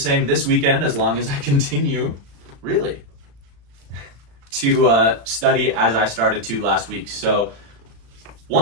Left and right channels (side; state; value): left; late; 35 ms